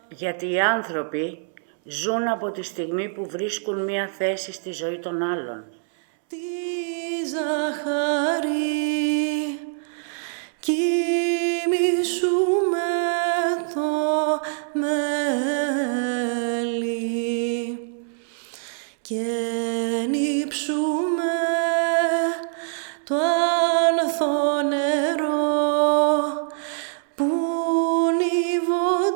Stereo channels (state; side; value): silent; left; 63 dB below the other